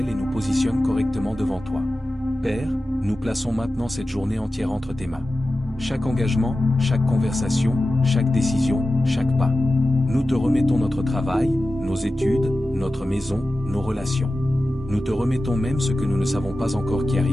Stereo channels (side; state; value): both; normal; correlation 0.94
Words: et nous positionne correctement devant toi. Père, nous plaçons maintenant cette journée entière entre tes mains. Chaque engagement, chaque conversation, chaque décision, chaque pas. Nous te remettons notre travail, nos études, notre maison, nos relations. Nous te remettons même ce que nous ne savons pas encore qui